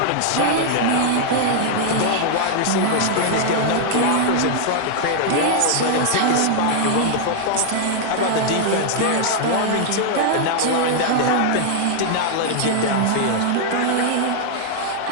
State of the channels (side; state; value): both; different; correlation -0.01